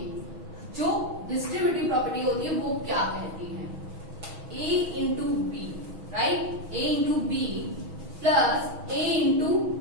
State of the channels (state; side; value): late; left; 6.2 ms